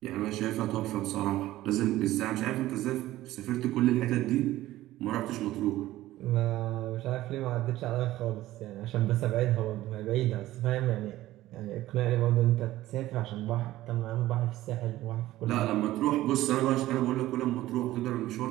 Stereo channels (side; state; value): left; quieter; 15.7 dB